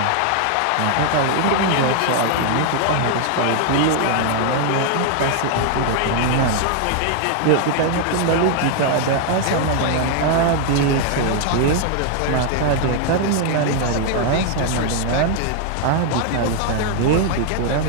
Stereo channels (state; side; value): different; both; correlation 0.00